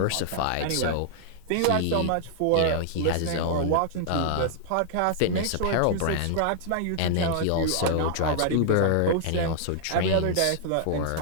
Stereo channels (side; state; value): both; different; correlation -0.01